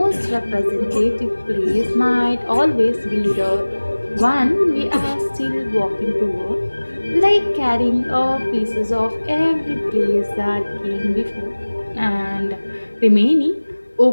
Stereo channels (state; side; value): inverted; both; correlation -1.00